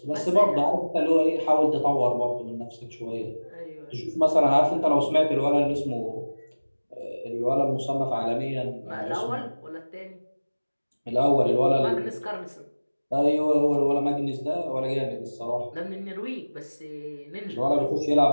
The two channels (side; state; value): both; inverted; correlation -1.00